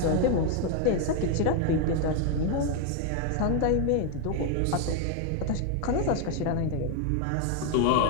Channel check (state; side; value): different; both; correlation 0.01